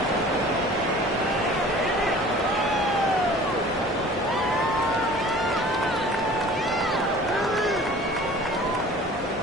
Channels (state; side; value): normal; both; correlation 0.45